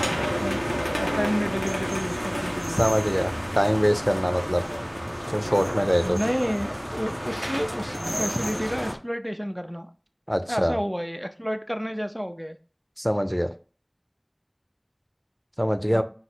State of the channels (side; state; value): both; identical; correlation 1.00